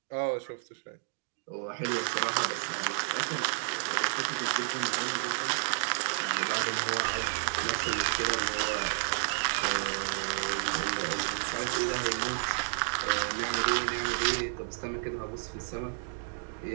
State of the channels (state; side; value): silent; left; digital silence